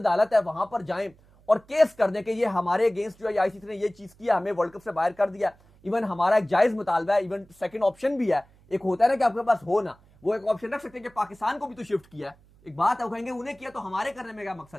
है वहां पर जाएं और केस कर दें कि ये हमारे अगेंस्ट जो है आईसीसी ने ये चीज किया, हमें वर्ल्ड कप से बाहर कर दिया। इवन हमारा एक जायज मुतालबा है, इवन सेकंड ऑप्शन भी है, एक होता है ना कि आपके पास हो ना, वो एक ऑप्शन रख सकते हैं कि पाकिस्तान को भी तो शिफ्ट किया है, एक बात है, वो कहेंगे उन्हें किया तो हमारे करने में क्या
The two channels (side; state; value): right; noise; hum, 28 dB below the sound